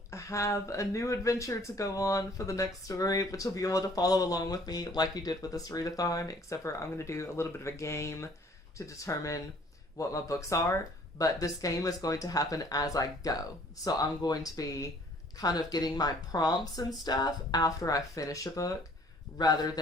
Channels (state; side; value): normal; both; correlation 0.56